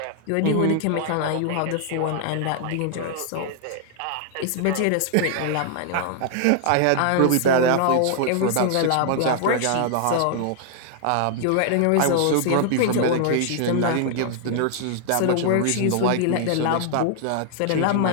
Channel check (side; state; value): both; different; correlation 0.00